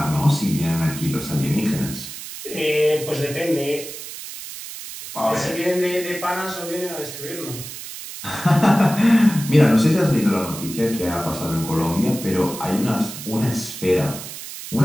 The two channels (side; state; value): right; noise; hiss, 11 dB below the sound